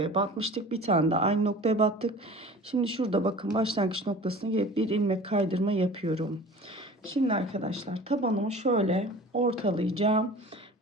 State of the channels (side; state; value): both; normal; correlation 0.41